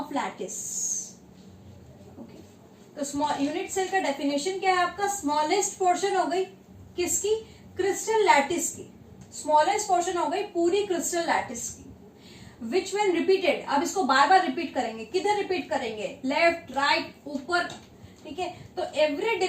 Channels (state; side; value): identical; both; correlation 1.00